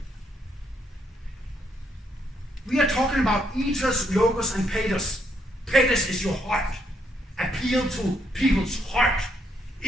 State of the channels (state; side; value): normal; both; correlation 0.74